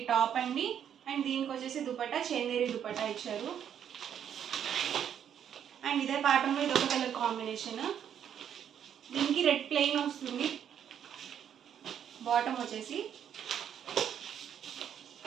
టాప్ అండి. అండ్ దీనికి వచ్చేసి దుపట్టా చందేరి దుపట్టా ఇచ్చారు. అండ్ ఇదే ప్యాటర్న్లో ఇది ఒక కలర్ కాంబినేషన్. దీనికి రెడ్ ప్లెయిన్ వస్తుంది. బాటమ్ వచ్చేసి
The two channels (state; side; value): quieter; left; 9.1 dB